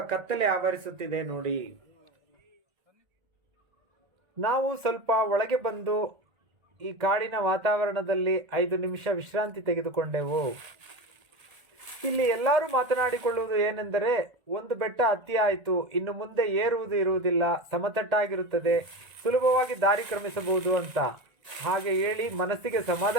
ಕತ್ತಲೆ ಆವರಿಸುತ್ತಿದೆ ನೋಡಿ. ನಾವು ಸ್ವಲ್ಪ ಒಳಗೆ ಬಂದು ಈ ಕಾಡಿನ ವಾತಾವರಣದಲ್ಲಿ 5 ನಿಮಿಷ ವಿಶ್ರಾಂತಿ ತೆಗೆದುಕೊಂಡೆವು. ಇಲ್ಲಿ ಎಲ್ಲರೂ ಮಾತನಾಡಿಕೊಳ್ಳುವುದು ಏನೆಂದರೆ, ಒಂದು ಬೆಟ್ಟ ಹತ್ತಿ ಆಯಿತು, ಇನ್ನು ಮುಂದೆ ಏರುವುದು ಇರುವುದಿಲ್ಲ, ಸಮತಟ್ಟಾಗಿರುತ್ತದೆ, ಸುಲಭವಾಗಿ ದಾರಿ ಕ್ರಮಿಸಬಹುದು ಅಂತ ಹಾಗೆ ಹೇಳಿ ಮನಸ್ಸಿಗೆ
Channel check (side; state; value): left; late; 1.8 ms